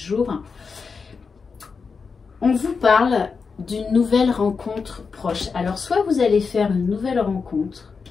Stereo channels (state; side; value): quieter; right; 5.2 dB